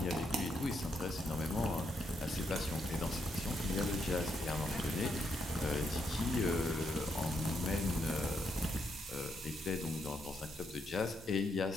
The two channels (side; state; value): both; normal; correlation 0.78